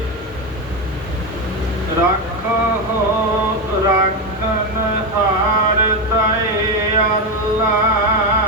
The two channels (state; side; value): normal; both; correlation 0.11